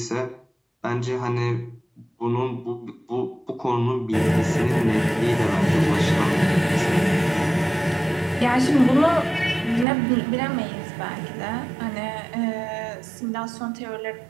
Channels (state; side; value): drops out; left; at 9.9 s